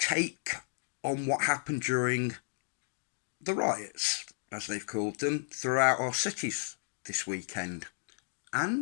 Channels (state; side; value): silent; right; digital silence